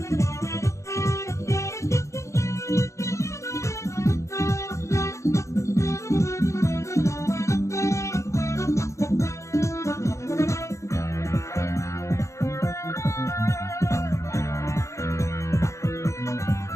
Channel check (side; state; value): right; late; 0.14 ms